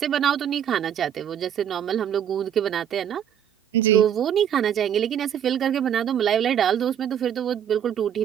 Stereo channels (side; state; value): left; quieter; 9.3 dB